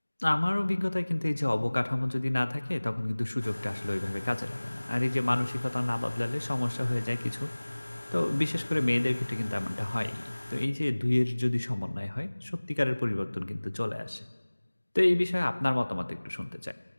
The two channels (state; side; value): inverted; both; correlation -1.00